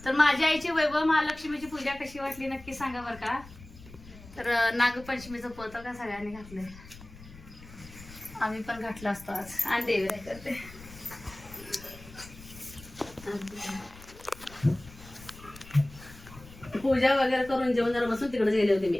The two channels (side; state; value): left; noise; rumble, 18 dB below the sound